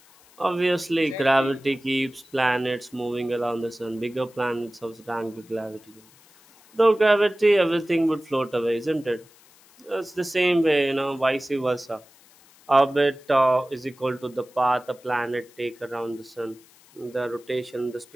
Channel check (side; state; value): left; noise; hiss, 27 dB below the sound